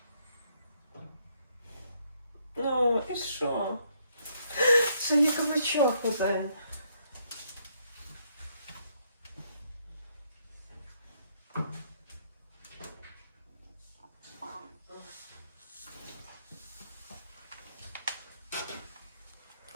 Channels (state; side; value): inverted; both; correlation -0.72